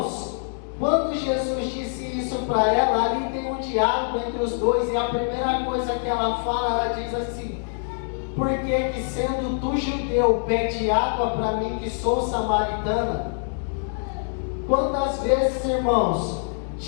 quando Jesus disse isso para ela, ali tem um diálogo entre os dois, e a primeira coisa que ela fala, ela diz assim, por que sendo tu judeu, pede água para mim que sou samaritana? Quantas vezes, irmãos,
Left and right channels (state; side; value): silent; right; digital silence